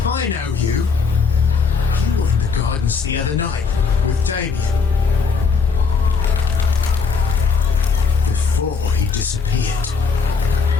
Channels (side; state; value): right; quieter; 5.2 dB